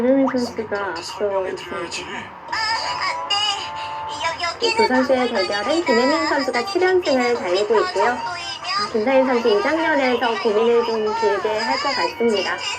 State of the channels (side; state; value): both; identical; correlation 1.00